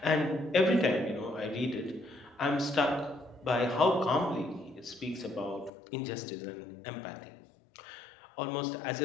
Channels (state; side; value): drops out; right; at 5.7 s